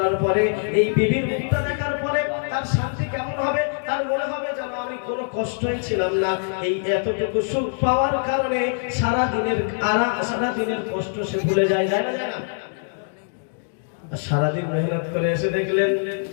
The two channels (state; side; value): silent; right; digital silence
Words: পরে এই বিবির মুখটা দেখার পরে তার শান্তি কেমন হবে? তার মনে হবে যেন আমি কোনো কষ্টই ছিলাম না। এই এতটুকু সুখ পাওয়ার কারণে সারা দিনের কষ্ট সে ভুলে যায়, যায় না? সারাদিন মেহনত করে এসে দেখলেন